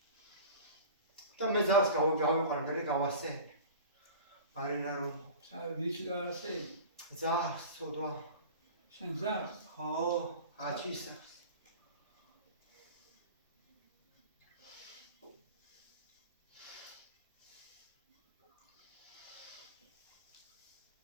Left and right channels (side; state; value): both; inverted; correlation -0.37